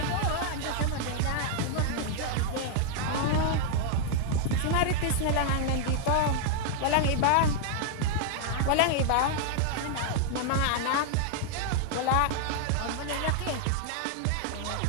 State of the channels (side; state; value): both; different; correlation 0.00